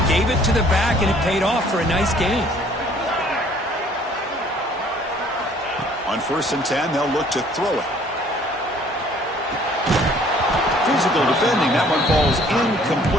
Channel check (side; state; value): both; normal; correlation 0.57